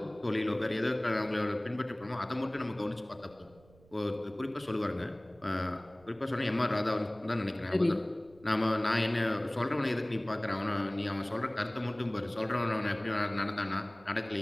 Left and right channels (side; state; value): right; noise; rumble, 27 dB below the sound